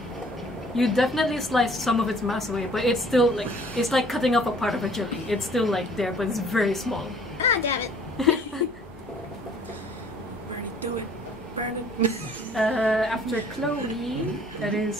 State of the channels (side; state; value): both; normal; correlation 0.55